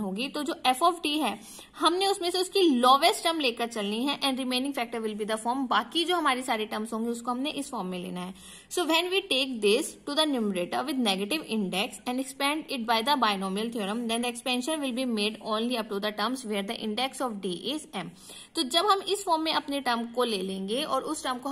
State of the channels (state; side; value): identical; both; correlation 1.00